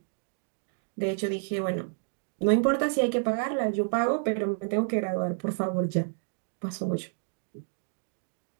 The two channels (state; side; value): silent; left; digital silence